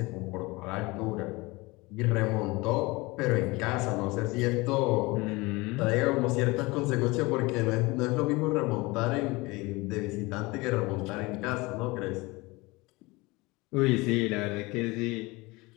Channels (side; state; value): right; quieter; 23.3 dB